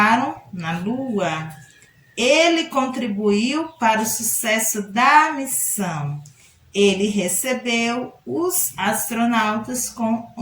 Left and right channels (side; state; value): both; identical; correlation 1.00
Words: na Lua. Ele contribuiu para o sucesso da missão. Ele recebeu os astronautas com